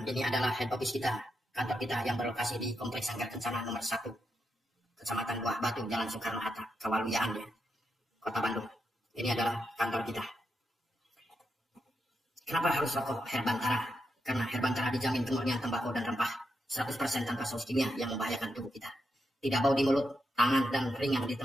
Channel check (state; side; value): normal; both; correlation 0.84